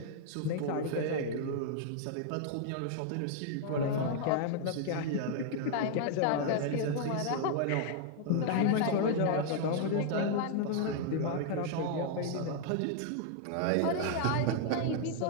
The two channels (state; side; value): different; both; correlation 0.00